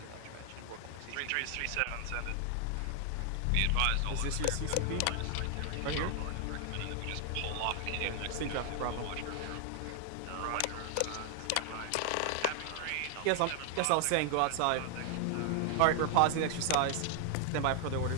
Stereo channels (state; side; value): different; both; correlation 0.00